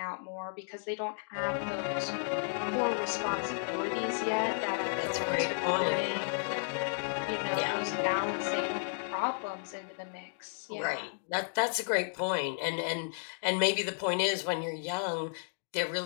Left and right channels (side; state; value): right; silent; digital silence